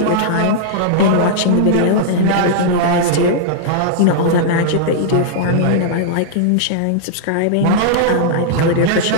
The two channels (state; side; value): different; both; correlation -0.02